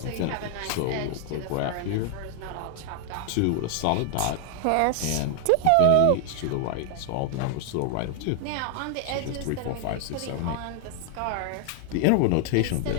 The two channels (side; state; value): both; different; correlation 0.00